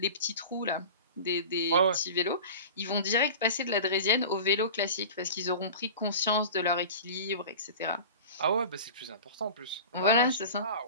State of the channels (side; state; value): both; inverted; correlation -0.35